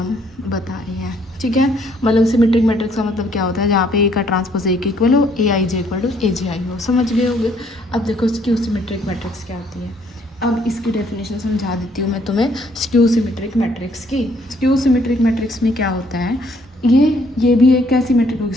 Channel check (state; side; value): normal; both; correlation 0.65